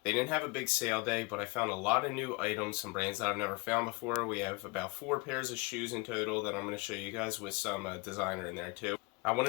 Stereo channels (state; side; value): quieter; right; 25.7 dB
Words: They didn't have a big sale day, but I found a lot of new items, some brands that I've never found before. We have about 4 pairs of shoes in total that I'm going to show you guys with some designer in there too. I